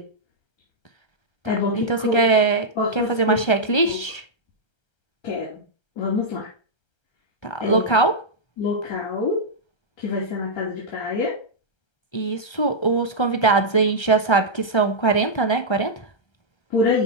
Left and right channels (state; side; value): late; right; 1.3 ms